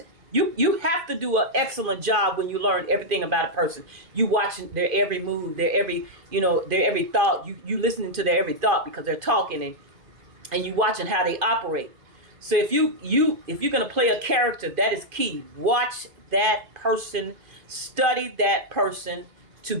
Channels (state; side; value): late; left; 2.5 ms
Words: You have to do an excellent job when you learn everything about a person. You watching their every move, their every their every thought. You listening to their every thought because they're talking and you watching how they operate. So if you're gonna play a character, that is key. Watch that person, study that person to